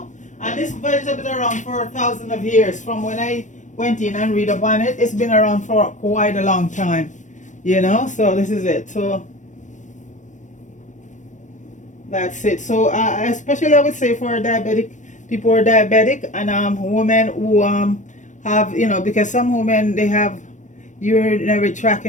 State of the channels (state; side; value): late; right; 0.36 ms